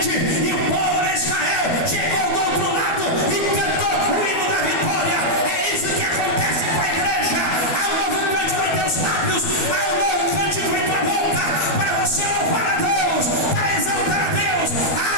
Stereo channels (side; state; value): right; late; 12 ms